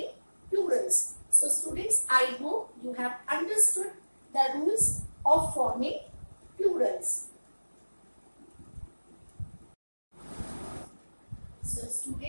plurals. So, students, I hope you have understood the rules of forming plurals. So,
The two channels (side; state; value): both; inverted; correlation -1.00